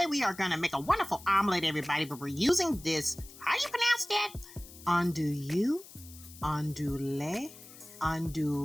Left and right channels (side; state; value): left; noise; hiss, 18 dB below the sound